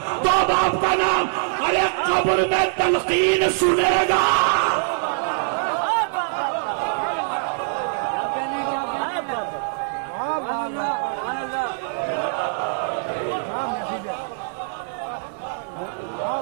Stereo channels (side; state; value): left; silent; digital silence